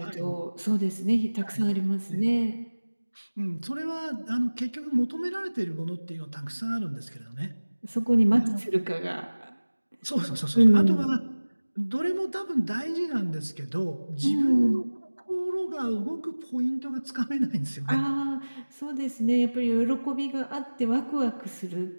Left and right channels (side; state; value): both; inverted; correlation -1.00